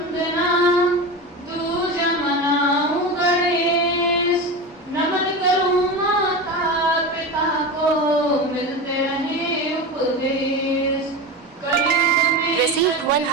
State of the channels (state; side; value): normal; both; correlation 0.24